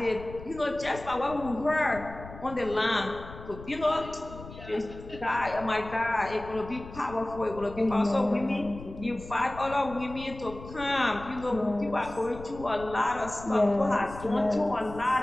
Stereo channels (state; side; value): noise; left; rumble, 14 dB below the sound